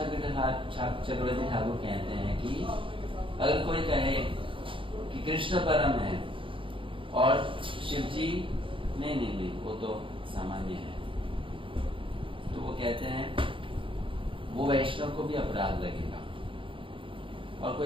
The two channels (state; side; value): late; left; 0.25 ms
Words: चक्रवर्ती ठाकुर कहते हैं कि अगर कोई कहे कि कृष्ण परम है और शिव जी नहीं वो तो सामान्य है, तो वो कहते हैं वो वैष्णव को भी अपराध लगेगा। और